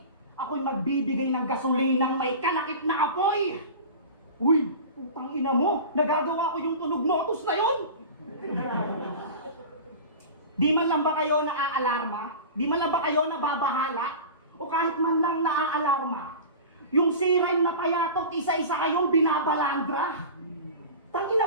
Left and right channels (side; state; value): both; inverted; correlation -0.33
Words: Ako'y magbibigay ng gasolinang may kalakip na apoy. Uy, putang ina mo, nagagawa ko yung tunog motus na yun. Di man lang ba kayo naaalarma? Di man lang ba kayo nababahala? O kahit man lang naaalarma? Yung siren na payatot, isa-isa kayong binabalandra?